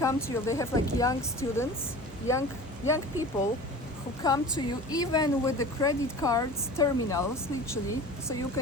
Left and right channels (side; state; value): both; normal; correlation 0.38